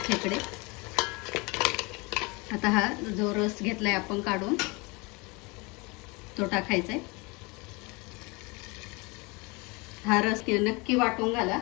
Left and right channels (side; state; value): right; quieter; 27.0 dB